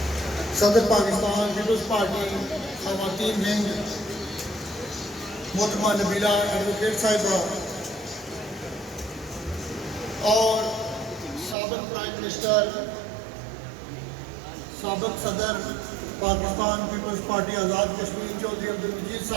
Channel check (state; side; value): drops out; left; at 11.6 s